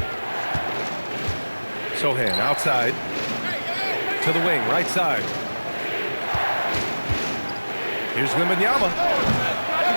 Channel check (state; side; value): inverted; both; correlation -1.00